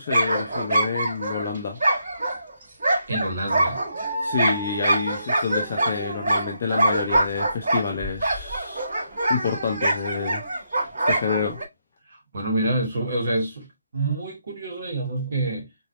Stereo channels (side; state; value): both; inverted; correlation -0.76